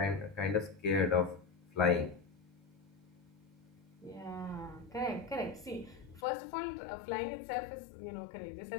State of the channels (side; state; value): right; drops out; at 6.2 s